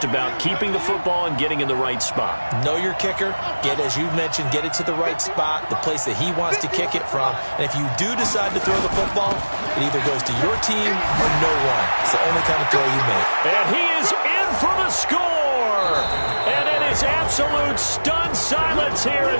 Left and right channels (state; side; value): inverted; both; correlation -1.00